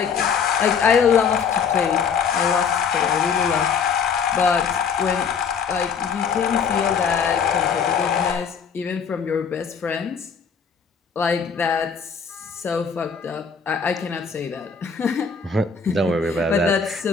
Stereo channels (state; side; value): quieter; right; 6.2 dB